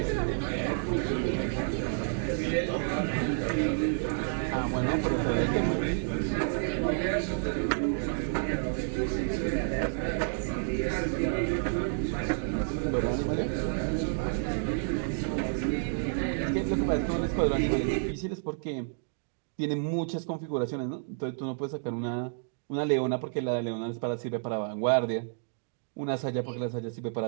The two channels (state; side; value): silent; left; digital silence